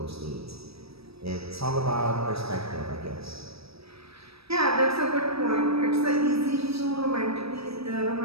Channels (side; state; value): left; late; 0.77 ms